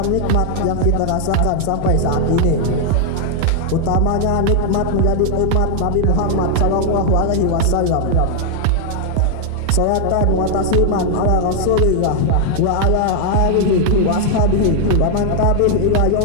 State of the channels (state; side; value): different; both; correlation 0.00